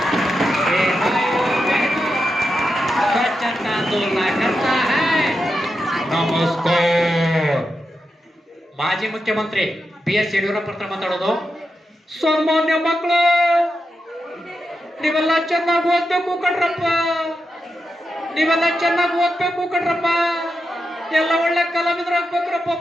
स्वच्छता आंदोलन करता है। ನಮಸ್ಕಾರ. ಮಾಜಿ ಮುಖ್ಯಮಂತ್ರಿ BS ಯಡಿಯೂರಪ್ಪ ಹತ್ರ ಮಾತಾಡೋದು. ಸಾಮಾನ್ಯ ಮಕ್ಕಳು, ನೀವೆಲ್ಲ ಚೆನ್ನಾಗಿ ಓದ್ಬೇಕು ಕಣ್ರಪ್ಪ, ನೀವೆಲ್ಲ ಚೆನ್ನಾಗಿ ಓದ್ಬೇಕು ಕಣ್ರಪ್ಪ, ಎಲ್ಲ ಒಳ್ಳೆ ಕಲಾವಿದರಾಗ್ಬೇಕ್ರಪ್ಪ.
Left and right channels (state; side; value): normal; both; correlation 0.88